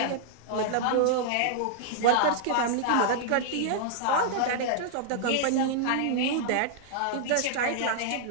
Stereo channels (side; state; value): both; different; correlation -0.01